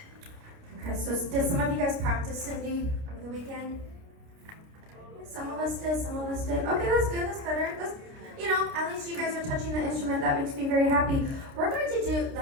Okay, so did some of you guys practice Cindy over the weekend? Some of us did, some of us did. Okay, that's good, that's better. At least you guys are touching the instrument. That makes me very happy. We're going to do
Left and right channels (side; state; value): left; late; 29 ms